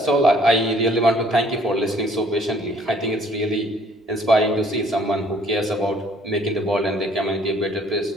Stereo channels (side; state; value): both; normal; correlation 0.59